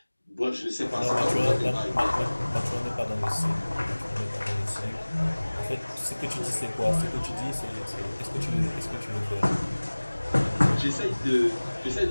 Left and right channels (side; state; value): both; inverted; correlation -1.00